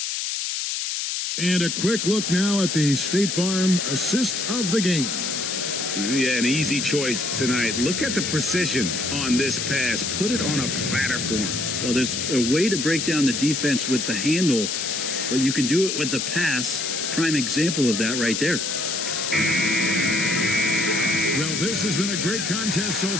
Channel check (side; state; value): left; noise; hiss, 2 dB below the sound